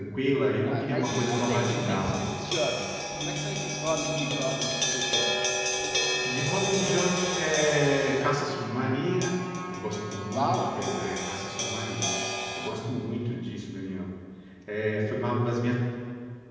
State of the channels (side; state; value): both; identical; correlation 1.00